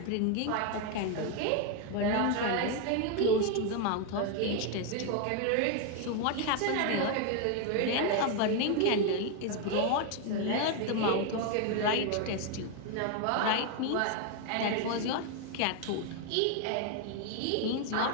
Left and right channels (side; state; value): both; different; correlation 0.01